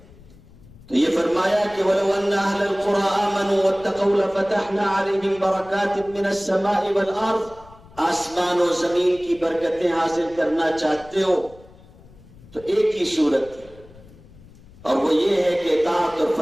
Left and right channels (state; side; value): noise; left; rumble, 23 dB below the sound